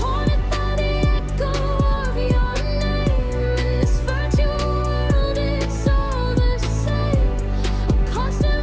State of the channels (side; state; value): both; identical; correlation 1.00